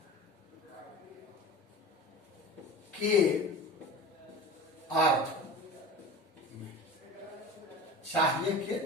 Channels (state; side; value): normal; both; correlation 0.35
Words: के अर्थ में, चाहिए के